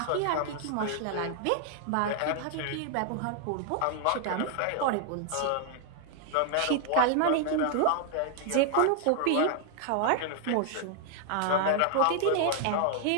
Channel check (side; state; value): both; different; correlation 0.00